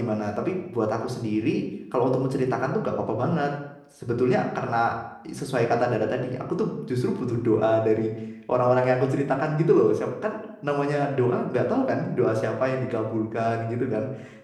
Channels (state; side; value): identical; both; correlation 1.00